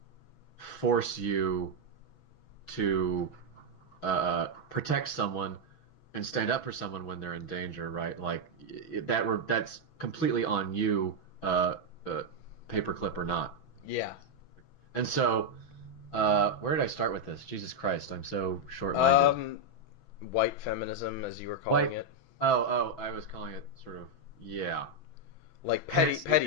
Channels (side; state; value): right; late; 6.1 ms